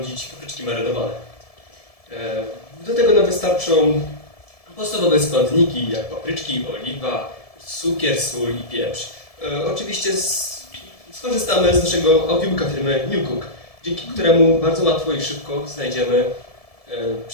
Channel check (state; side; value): late; right; 1.7 ms